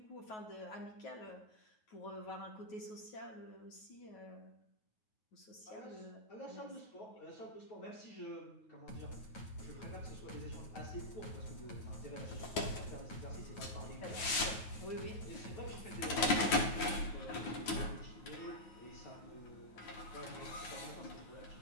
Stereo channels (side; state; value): right; late; 9.5 ms